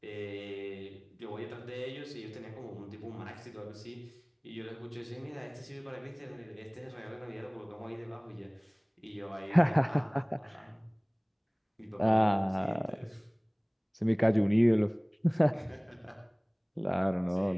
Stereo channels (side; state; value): both; identical; correlation 1.00